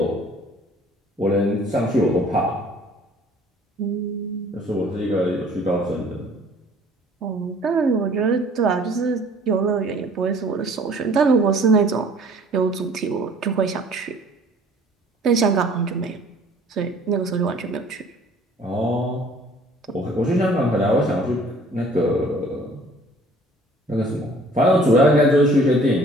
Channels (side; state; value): both; normal; correlation 0.53